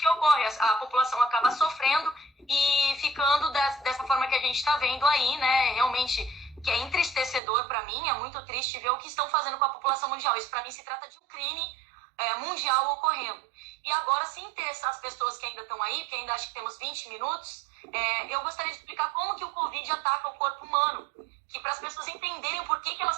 ocorre. A população acaba sofrendo e ficando dessa forma que a gente está vendo aí, né? Realmente, que é entristecedor para mim, é muito triste ver o que estão fazendo com a população mundial. Isso, para mim, se trata de um crime mundial ocorrendo. E agora, se interessar as pessoas que ainda estão aí, porque ainda acho que temos 20 minutos, eu gostaria de explicar como que o Covid ataca o corpo humano, que para as pessoas entenderem o porquê que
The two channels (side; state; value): left; drops out; at 7.4 s